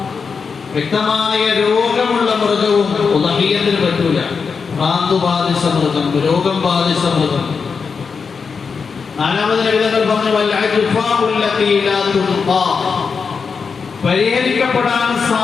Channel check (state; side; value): quieter; right; 5.5 dB